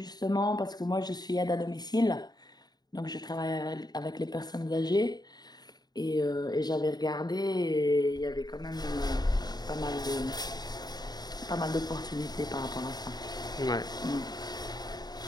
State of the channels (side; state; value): right; late; 0.20 ms